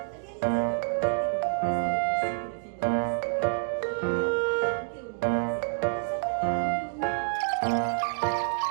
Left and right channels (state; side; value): silent; left; digital silence